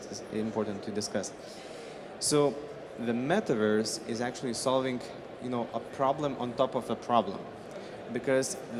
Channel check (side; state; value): both; identical; correlation 1.00